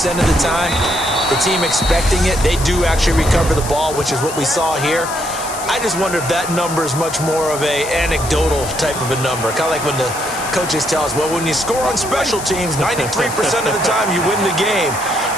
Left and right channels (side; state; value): left; noise; hiss, 9 dB below the sound